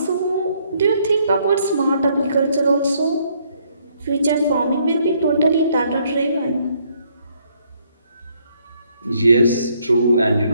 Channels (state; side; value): inverted; both; correlation -0.69